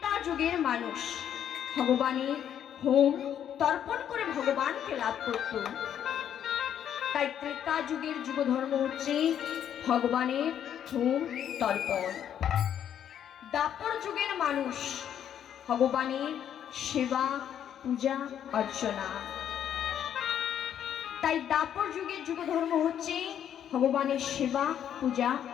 যুগের মানুষ ভগবানের হোম তর্পণ করে ভগবানকে লাভ করত। তাই ত্রেতা যুগের যুগ ধর্ম হচ্ছে ভগবানের হোম তর্পণ। দাপর যুগের মানুষ ভগবানের সেবা পূজা অর্চনা। তাই দাপর যুগের যুগ ধর্ম হচ্ছে ভগবানের সেবা পূজা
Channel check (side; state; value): right; quieter; 9.6 dB